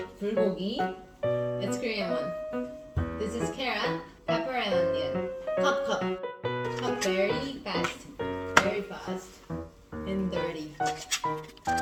bulgogi. It's Korean one. This is carrot, pepper, and onion. Cut very fast, and dirty.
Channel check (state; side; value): identical; both; correlation 1.00